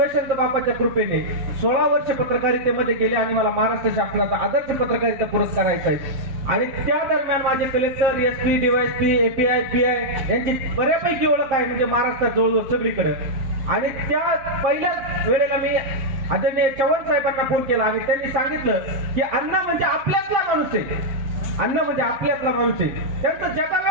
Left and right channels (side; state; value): left; late; 7.6 ms